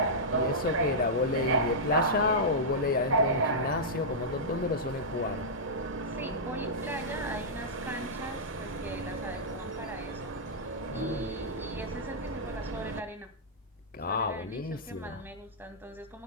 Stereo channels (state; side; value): normal; both; correlation -0.11